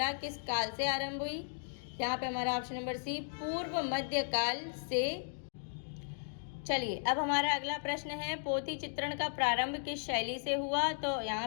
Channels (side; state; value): right; silent; digital silence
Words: किस काल से आरंभ हुई? यहाँ पे हमारा ऑप्शन नंबर सी, पूर्व मध्य काल से। चलिए, अब हमारा अगला प्रश्न है पोथी चित्रण का प्रारंभ किस शैली से हुआ? तो यहाँ